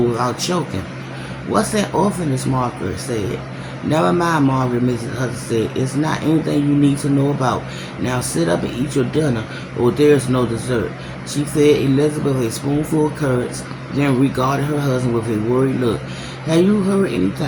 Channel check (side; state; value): both; identical; correlation 1.00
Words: choking. What's that orphanage, Margaret said. Never mind, Margaret, Mrs. Hudson said. It's not anything you need to know about. Now sit up and eat your dinner, or there's no dessert. She fed Elizabeth a spoonful of curds, then regarded her husband with a worried look. Have you heard